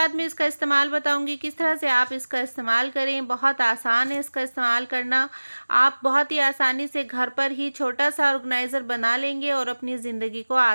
मैं इसका इस्तेमाल बताऊंगी किस तरह से आप इसका इस्तेमाल करें। बहुत आसान है इसका इस्तेमाल करना। आप बहुत ही आसानी से घर पर ही छोटा सा ऑर्गेनाइज़र बना लेंगे और अपनी ज़िंदगी को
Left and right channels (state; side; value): inverted; both; correlation -1.00